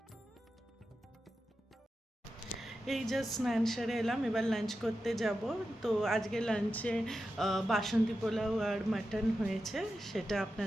এই জাস্ট স্নান সেরে এলাম, এবার লাঞ্চ করতে যাব। তো আজকে লাঞ্চে বাসন্তী পোলাও আর মাটন হয়েছে, সেটা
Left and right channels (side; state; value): both; normal; correlation 0.91